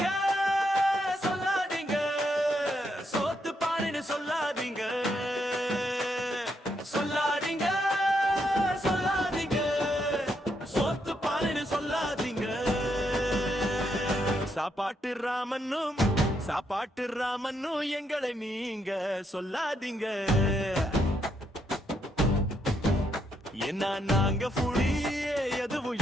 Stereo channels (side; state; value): both; normal; correlation 0.77